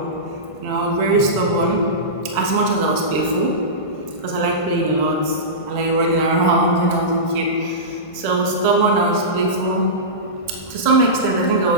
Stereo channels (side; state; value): right; late; 1.5 ms